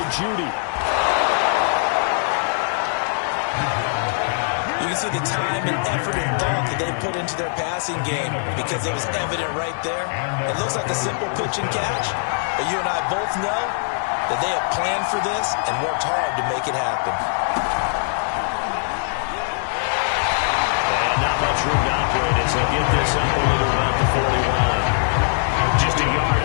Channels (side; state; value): right; silent; digital silence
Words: Judy. You can see the time and effort and thought that they put into their passing game because it was evident right there. It looks like a simple pitch and catch, but you and I both know that they have planned for this and worked hard to make it happen. And not much room to operate as they get this up only to about the 41. Just a yard